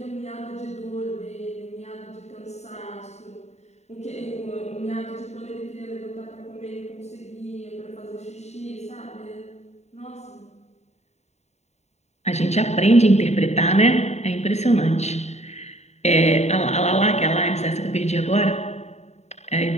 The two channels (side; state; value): right; late; 0.32 ms